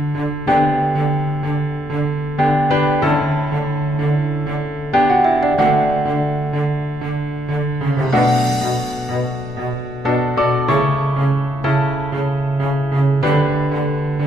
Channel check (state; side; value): noise; left; rumble, 19 dB below the sound